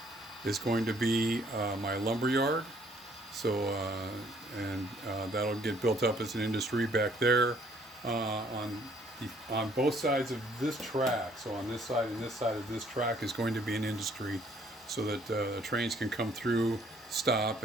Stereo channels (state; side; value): normal; both; correlation 0.63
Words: is going to be my lumber yard. So that'll get built up as an industry back there on both sides of this track. So on this side and this side of this track is going to be an industry, so that trains can come through, stop,